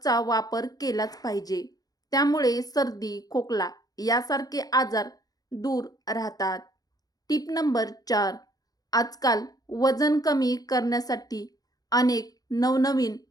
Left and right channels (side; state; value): right; late; 0.18 ms